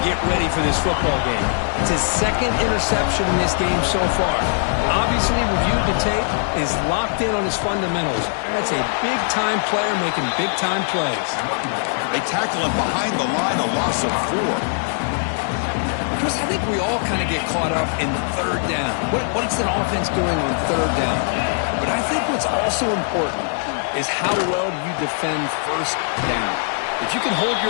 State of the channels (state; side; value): silent; right; digital silence